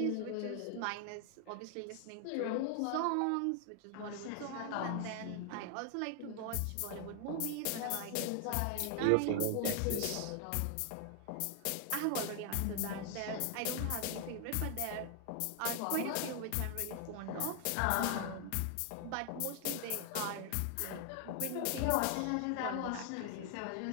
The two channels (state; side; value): different; both; correlation 0.00